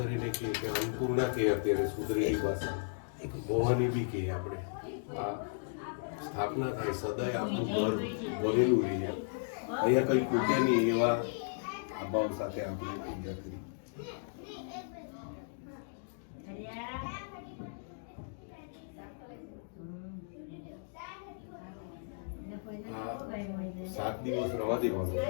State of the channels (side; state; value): right; silent; digital silence